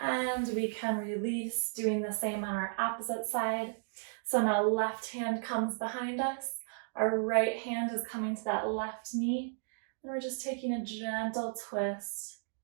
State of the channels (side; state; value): left; silent; digital silence